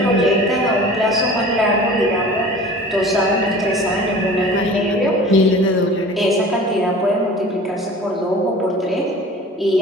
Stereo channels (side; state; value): both; normal; correlation 0.41